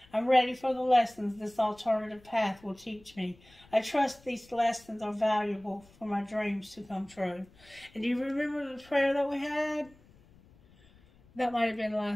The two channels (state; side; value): noise; left; rumble, 27 dB below the sound